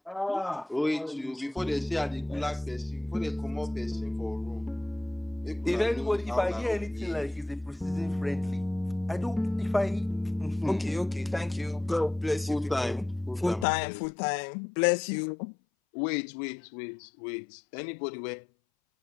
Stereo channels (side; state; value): right; drops out; at 13.7 s